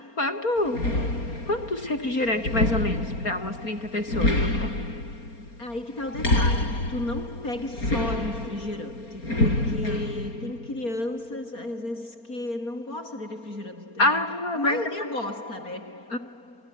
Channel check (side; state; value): right; late; 4.3 ms